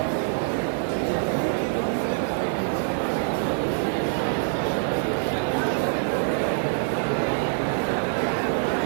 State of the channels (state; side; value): silent; left; 62 dB below the other